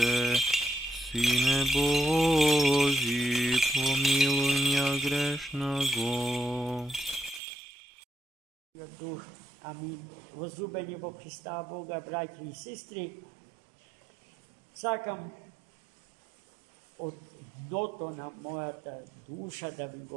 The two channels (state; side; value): drops out; left; at 7.4 s